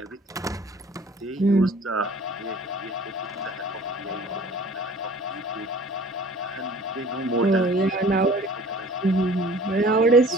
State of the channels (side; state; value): both; normal; correlation 0.48